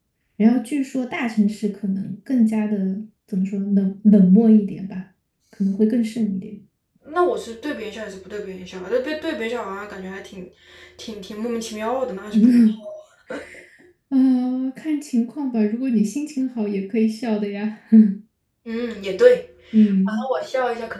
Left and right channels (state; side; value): identical; both; correlation 1.00